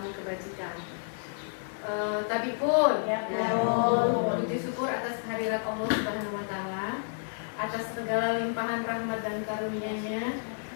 kebajikan. Tapi pun, puji syukur atas kehadirat Allah Subhanahu wa Ta'ala, atas segala limpahan rahmat dan karunia-Nya.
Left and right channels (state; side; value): silent; right; digital silence